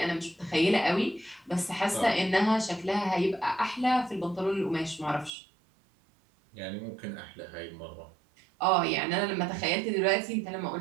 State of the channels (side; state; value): left; drops out; at 5.3 s